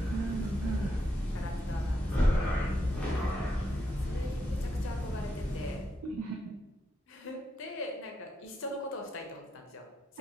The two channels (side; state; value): both; normal; correlation 0.82